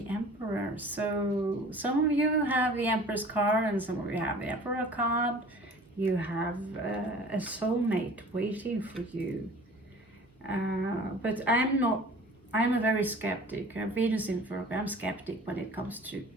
Emperor, so some of you have the Empress card and some of you have the Emperor card. You have a soulmate waiting for you. But I'm a very skeptic. Venus in Virgo, I'm skeptic when it comes to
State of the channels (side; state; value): both; normal; correlation 0.45